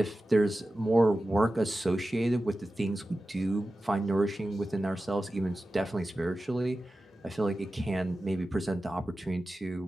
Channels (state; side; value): normal; both; correlation 0.94